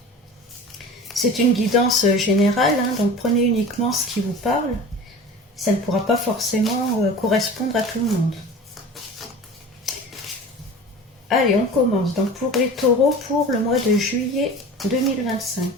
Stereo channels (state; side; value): normal; both; correlation 0.37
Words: C'est une guidance générale, donc prenez uniquement ce qui vous parle. Ça ne pourra pas forcément correspondre à tout le monde. Allez, on commence. Donc pour les taureaux, pour le mois de juillet 2025.